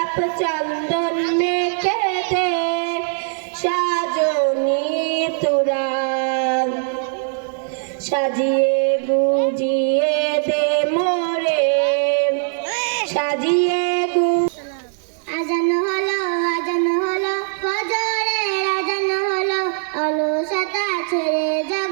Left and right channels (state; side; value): silent; left; 65 dB below the other